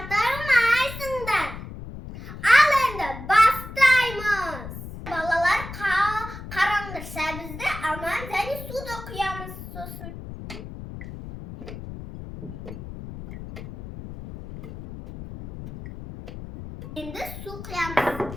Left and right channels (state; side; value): noise; left; rumble, 11 dB below the sound